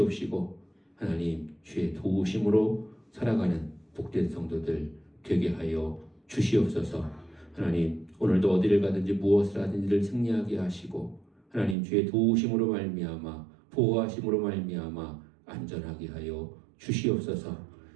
하나님 주의 도우심으로 살아가는 복된 성도들 되게 하여 주시옵소서. 하나님 오늘도 어디를 가든지 무엇을 하든지를 승리하게 하시고 하나님 주의 도우심으로 말미암아 보호하심으로 말미암아 안전하게 하여 주시옵소서.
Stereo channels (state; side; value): drops out; left; at 11.8 s